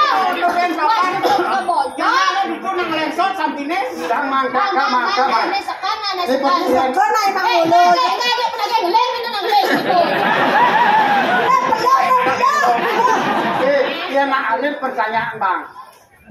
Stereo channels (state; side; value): identical; both; correlation 1.00